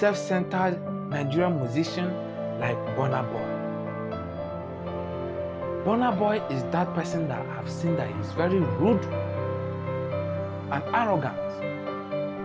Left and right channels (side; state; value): both; identical; correlation 1.00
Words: Nigerian musician like Burna Boy. Burna Boy is that person that I've seen that is very rude and arrogant.